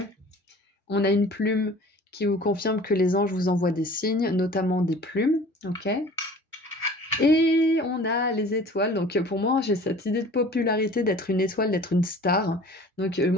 ? On a une plume qui vous confirme que les anges vous envoient des signes, notamment des plumes, ok ? Et on a les étoiles, donc pour moi j'ai cette idée de popularité d'être une étoile, d'être une star. Donc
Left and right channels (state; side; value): normal; both; correlation 0.45